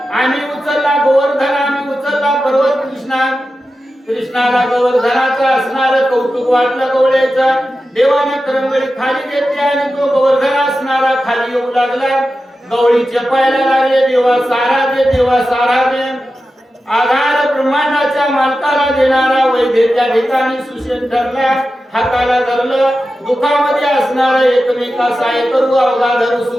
आम्ही उचलला गोवर्धन आम्ही उचलला पर्वत कृष्णाला गोवर्धनाचं असणारं कौतुक वाटलं गवळ्याचं देवाने करंगळी खाली घेतली आणि तो गोवर्धन असणारा खाली येऊ लागला गवळी चपायला लागले देवा सारा दे आधार ब्रह्मांडाच्या मालकाला देणारा वैद्य त्या ठिकाणी सुशेन ठरला हाताला धरलं दुःखामध्ये असणारा एकमेका सहाय्य करू अवघा धरू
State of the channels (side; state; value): both; normal; correlation 0.92